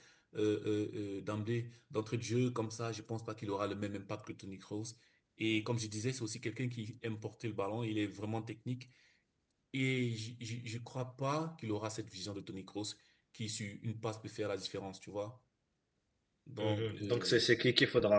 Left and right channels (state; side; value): identical; both; correlation 1.00